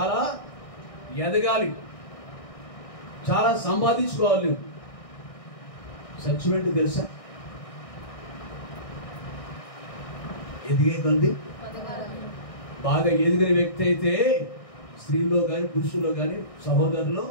ఎదగాలి, చాలా సంపాదించుకోవాలి. నువ్వు సత్యమేంటి తెలుసా? ఎదిగే కొద్ది బాగా ఎదిగిన వ్యక్తి అయితే స్త్రీలో కానీ పురుషుల్లో కానీ సహోదరులో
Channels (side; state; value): right; late; 1.6 ms